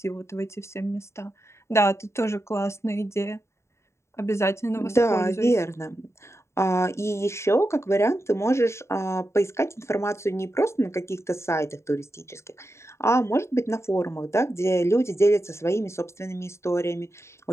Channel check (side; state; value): right; late; 0.13 ms